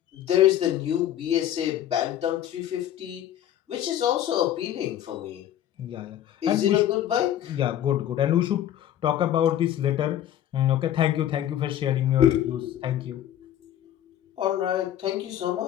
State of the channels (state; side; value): quieter; right; 11.4 dB